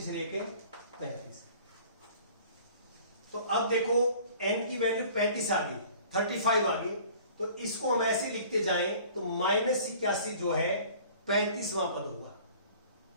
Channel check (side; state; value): both; inverted; correlation -0.49